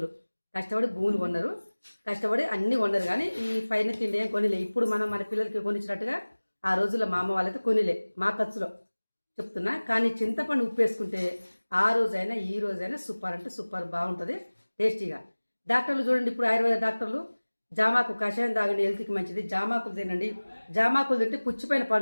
కష్టపడి భూములు కొన్నారు, కష్టపడి అన్ని కొన్నారు, కానీ ఈ పైన తిండి ఏం కొనిలే. ఇప్పుడు మనం మన పిల్లలకి కొనిచ్చినట్టుగా ఆ రోజుల్లో మా అమ్మ వాళ్ళైతే కొనిలే, మా ఖర్చులో చెప్తున్నా. కానీ చింతపండు ఉప్పు వేసుకుంటే ఆ రోజైనా ఈ రోజైనా సూపర్ అంటే సూపర్ బాగుంటుంది, టేస్టీగా. డాక్టర్లు చూడండి, ఇప్పుడు ఆయుర్వేద డాక్టర్లు జామాకు కషాయం తాగండి, హెల్త్కి మంచిది, జామాకులు తినండి, జామాకులు తింటే పుచ్చిపోయిన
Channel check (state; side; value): inverted; both; correlation -1.00